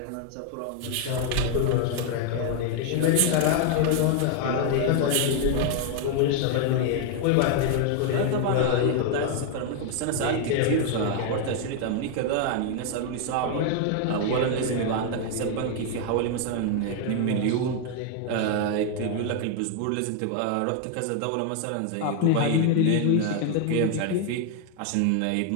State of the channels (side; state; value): both; different; correlation 0.00